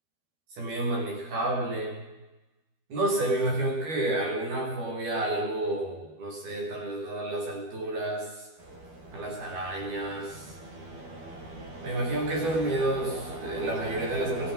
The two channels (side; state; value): left; late; 12 ms